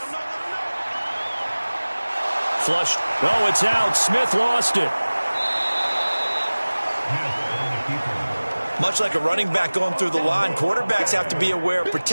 Flushed. Oh, it's out. Smith lost it. Much like a running back going through the line, quarterbacks have to be aware of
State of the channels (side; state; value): both; inverted; correlation -1.00